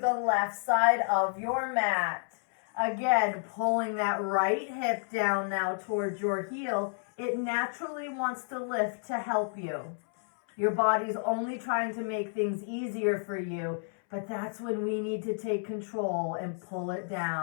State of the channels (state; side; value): silent; right; 57 dB below the other